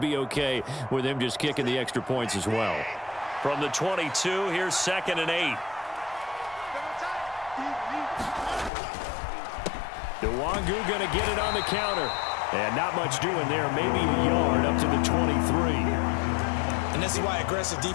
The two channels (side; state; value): right; drops out; at 8.7 s